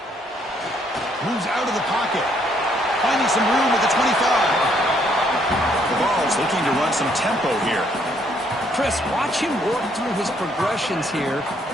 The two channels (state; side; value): normal; both; correlation 0.69